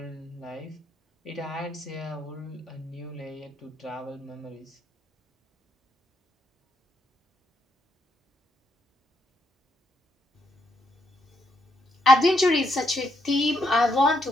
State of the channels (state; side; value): normal; both; correlation 0.76